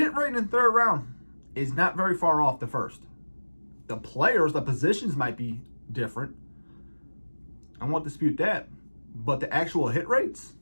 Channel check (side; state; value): both; inverted; correlation -1.00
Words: rate in the third round is not very far off the first. The players, the positions might be different. I won't dispute that, but the actual hit rates,